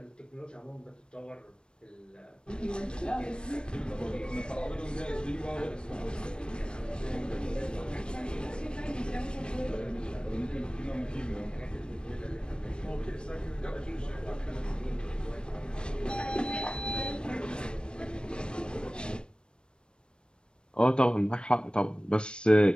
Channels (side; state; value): right; late; 0.052 ms